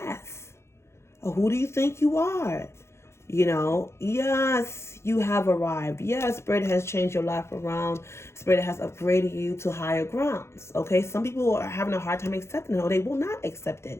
Or who do you think you are? Yes, you have arrived. Yes, Spirit has changed your life around. Spirit has upgraded you to higher grounds. Okay, some people are having a hard time accepting it, or they will not accept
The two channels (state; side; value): late; right; 0.13 ms